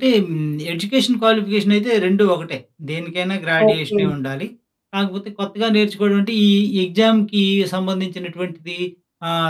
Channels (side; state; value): both; identical; correlation 1.00